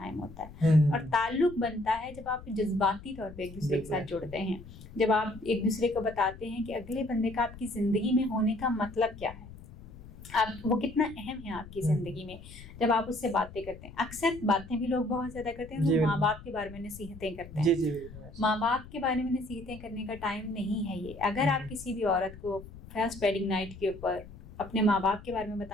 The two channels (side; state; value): left; noise; rumble, 16 dB below the sound